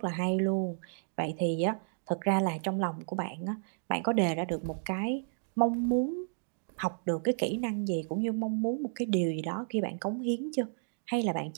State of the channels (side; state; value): left; silent; digital silence